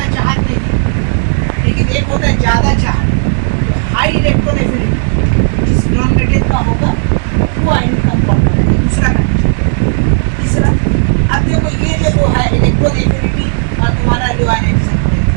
है चाहत नहीं, लेकिन एक होता है ज़्यादा चाहत, तो हाई इलेक्ट्रॉन एफिनिटी जिस नॉन मेटल का होगा वो आयनिक कंपाउंड बनेगा, दूसरा कंडीशन, तीसरा अब देखो ये जो है इलेक्ट्रॉन एफिनिटी और तुम्हारा लो आयोनाइजेशन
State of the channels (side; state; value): left; silent; digital silence